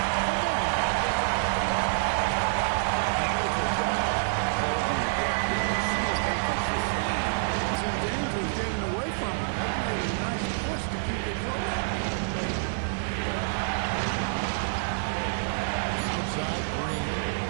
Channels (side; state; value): left; silent; 60 dB below the other